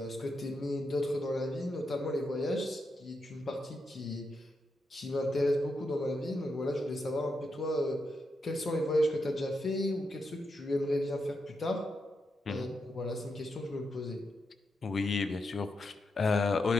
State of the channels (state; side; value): normal; both; correlation 0.85